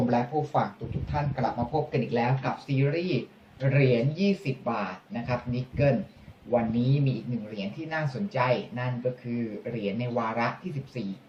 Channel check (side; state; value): both; identical; correlation 1.00